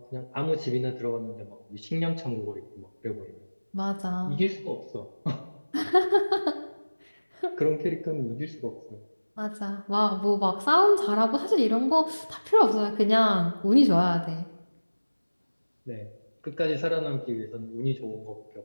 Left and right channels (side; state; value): both; inverted; correlation -1.00